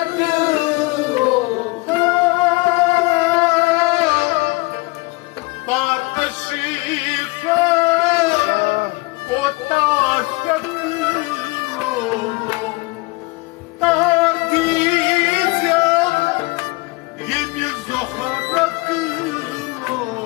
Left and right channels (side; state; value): right; quieter; 24.9 dB